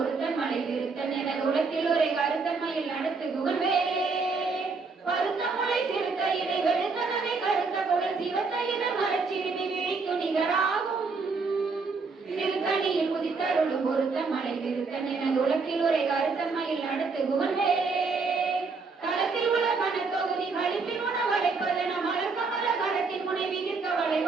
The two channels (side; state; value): left; quieter; 4.4 dB